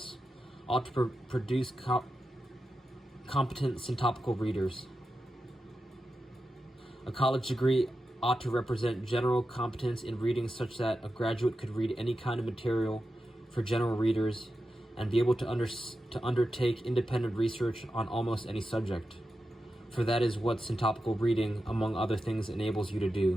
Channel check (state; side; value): normal; both; correlation 0.90